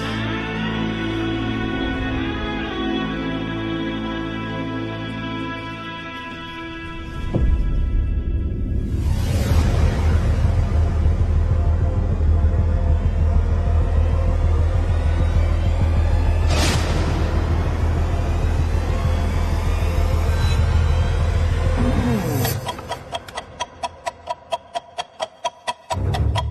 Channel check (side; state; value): both; identical; correlation 1.00